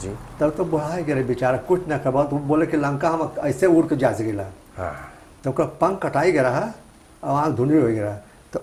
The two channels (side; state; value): both; identical; correlation 1.00